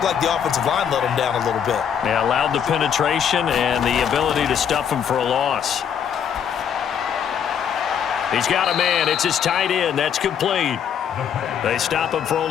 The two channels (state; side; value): quieter; right; 8.2 dB